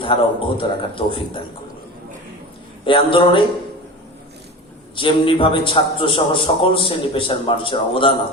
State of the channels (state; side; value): normal; both; correlation 0.32